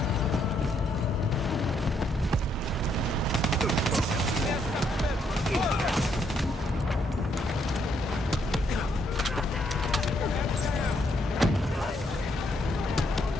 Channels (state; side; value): normal; both; correlation 0.73